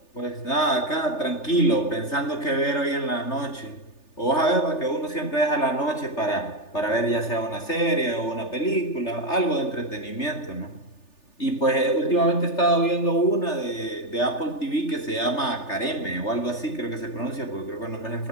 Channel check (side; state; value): right; late; 3.4 ms